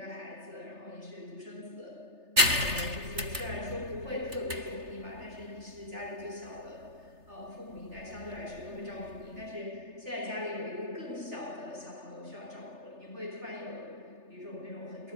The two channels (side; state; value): left; late; 3.3 ms